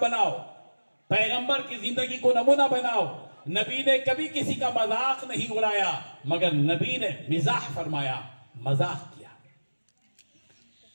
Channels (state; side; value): inverted; both; correlation -1.00